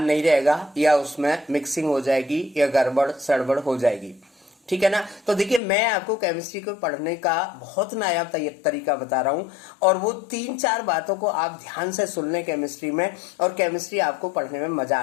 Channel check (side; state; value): right; drops out; at 5.6 s